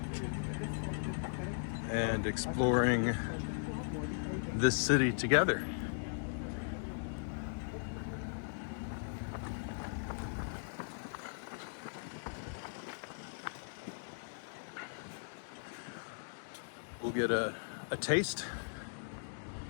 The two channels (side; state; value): right; silent; digital silence